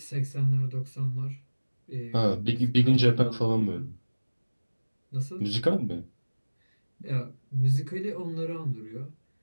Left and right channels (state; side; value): inverted; both; correlation -1.00